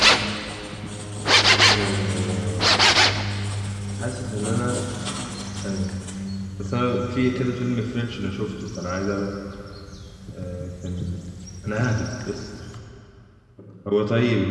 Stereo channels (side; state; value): both; identical; correlation 1.00